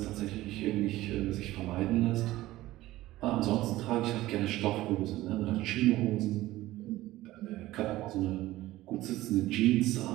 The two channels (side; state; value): left; quieter; 16.6 dB